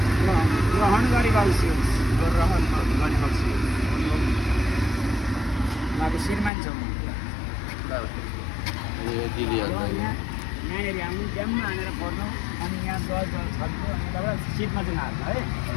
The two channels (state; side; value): drops out; right; at 6.5 s